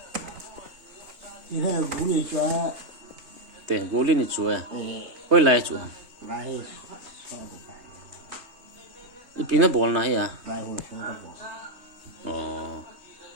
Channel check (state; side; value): late; left; 3.3 ms